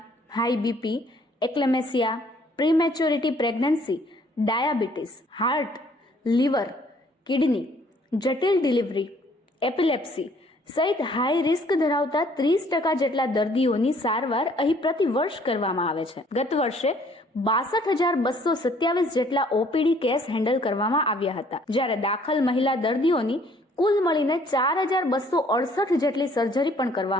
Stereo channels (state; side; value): normal; both; correlation 0.60